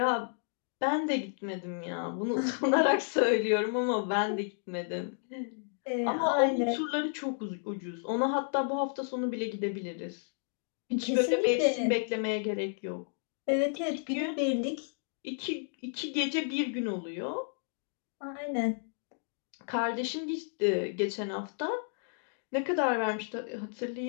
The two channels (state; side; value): silent; right; digital silence